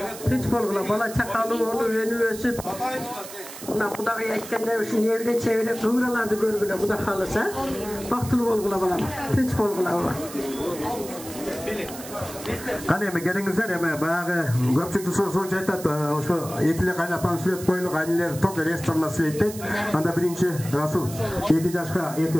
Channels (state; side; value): noise; right; hiss, 13 dB below the sound